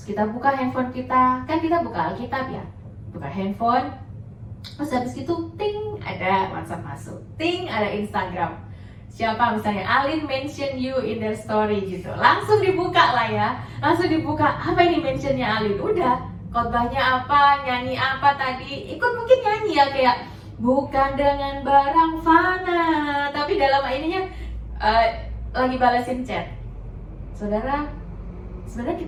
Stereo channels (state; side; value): identical; both; correlation 1.00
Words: kita buka handphone kita, kan kita buka Alkitab ya, buka handphone, terus habis itu ting ada WhatsApp masuk, ting ada Instagram. Siapa misalnya Alin mention you in their story gitu, langsung dibuka lah ya, langsung dibuka, apa ini mentionnya Alin, udah khotbahnya apa, nyanyi apa tadi, ikut mungkin nyanyi ya, kayak bukan dengan barang fana, tapi dalam ininya lagi balasin chat. Saudara, sebenarnya